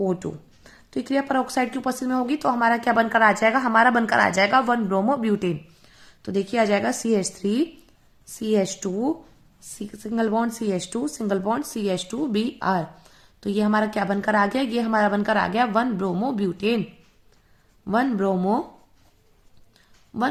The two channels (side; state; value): both; identical; correlation 1.00